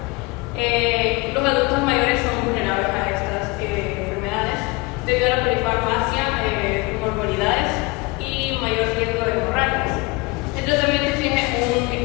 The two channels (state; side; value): quieter; right; 24.9 dB